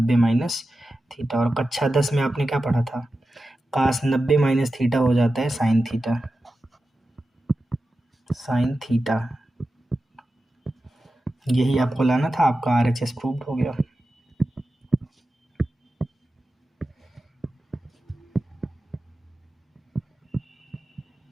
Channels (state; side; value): normal; both; correlation 0.92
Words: - थीटा, और कक्षा 10 में आपने क्या पढ़ा था, cos 90 - थीटा हो जाता है साइन थीटा, साइन थीटा। यही आपको लाना था, आपका RHS प्रूव्ड हो गया।